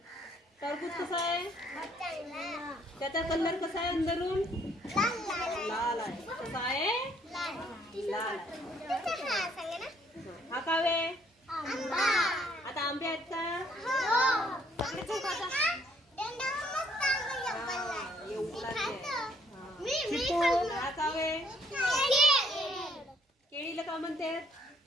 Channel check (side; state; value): both; normal; correlation 0.65